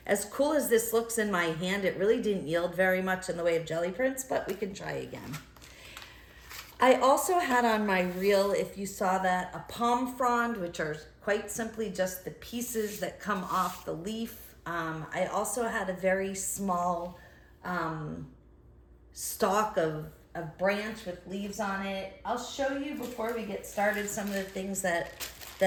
as cool as this looks in my hand, it really didn't yield very much in the way of jelly prints, but we can try again. I also had on my reel, if you saw that, a palm frond, which are quite simply just the pieces that come off the leaf. I also had a very small stalk of branch with leaves on it. I'll show you before we get started some of the things that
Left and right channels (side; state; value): both; identical; correlation 1.00